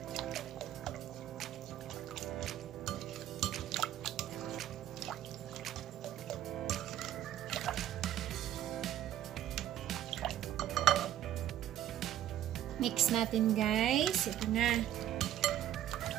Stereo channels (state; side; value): quieter; left; 11.8 dB